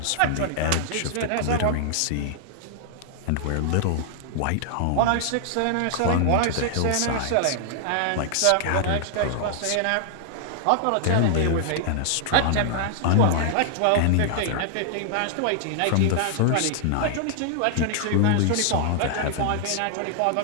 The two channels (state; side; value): different; both; correlation 0.00